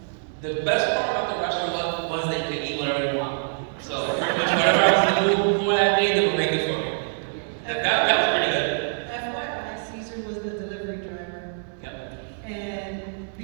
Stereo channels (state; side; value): silent; left; digital silence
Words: the best part about the restaurant was that you could eat whatever you want. So pretty much whatever I was in the mood for that day, they would make it for me. That was pretty good. FYI, Caesar was the delivery driver. Yep. And